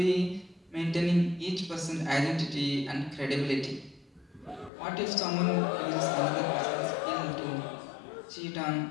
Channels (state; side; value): drops out; right; at 4.7 s